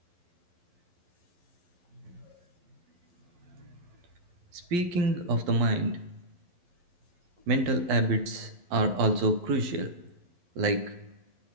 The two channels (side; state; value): left; late; 11 ms